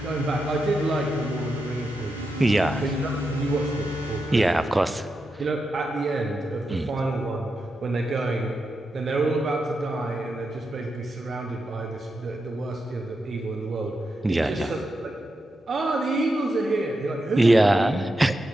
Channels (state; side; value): normal; both; correlation 0.87